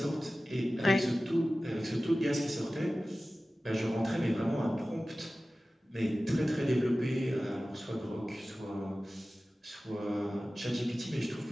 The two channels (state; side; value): normal; both; correlation 0.96